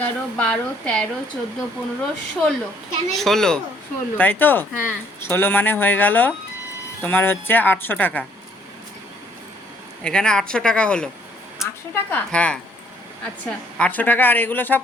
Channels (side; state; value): both; normal; correlation 0.65